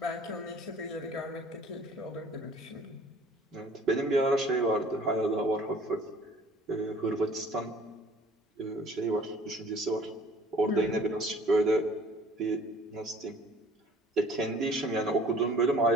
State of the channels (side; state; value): both; normal; correlation 0.52